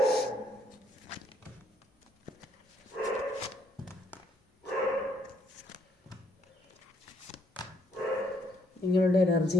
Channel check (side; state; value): both; normal; correlation 0.69